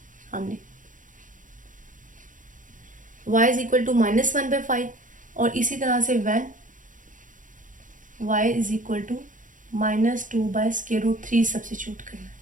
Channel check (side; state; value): left; late; 0.38 ms